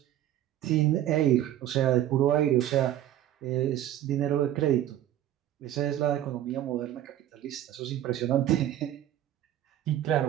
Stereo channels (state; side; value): quieter; left; 12.3 dB